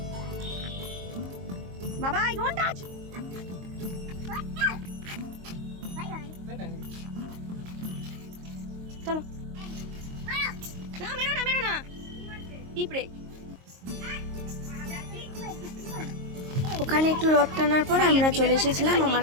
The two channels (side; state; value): left; late; 22 ms